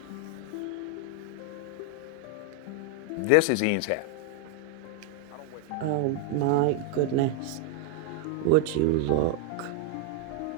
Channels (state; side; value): different; both; correlation 0.01